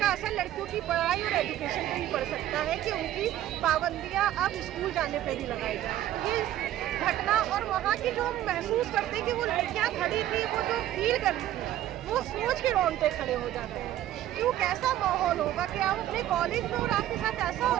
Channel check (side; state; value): left; quieter; 13.0 dB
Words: असर लड़कियों की पढ़ाई और एजुकेशन पे भी पड़ सकता है कि उनकी पाबंदियाँ अब स्कूल जाने पे भी लगाई जाए। ये घटना और वहाँ की जो हम महसूस करते हैं कि वो लड़कियाँ खड़ी थी, वो जो फील करती थी, वो सोच के रोंगटे खड़े हो जाते हैं। क्यों, कैसा माहौल होगा कि आप अपने कॉलेज में और आपके साथ ऐसा हो